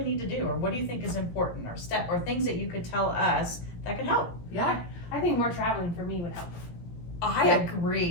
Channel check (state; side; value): late; right; 17 ms